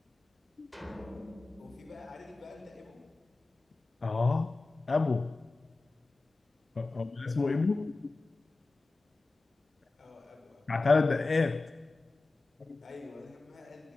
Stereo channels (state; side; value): quieter; right; 3.4 dB